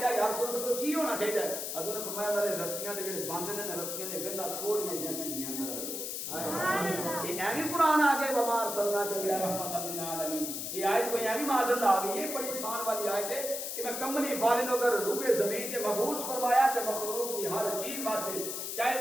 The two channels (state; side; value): noise; left; hiss, 4 dB below the sound